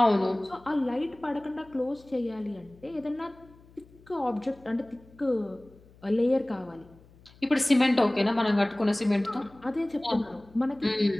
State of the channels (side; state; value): left; noise; hum, 26 dB below the sound